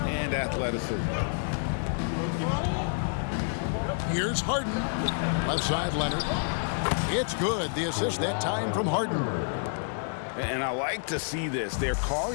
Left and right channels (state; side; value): silent; right; digital silence